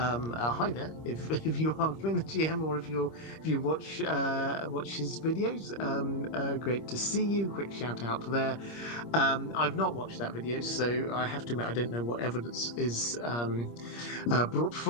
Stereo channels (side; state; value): right; late; 25 ms